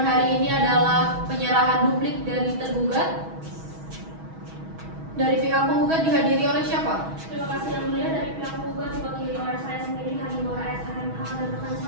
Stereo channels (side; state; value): left; late; 6.2 ms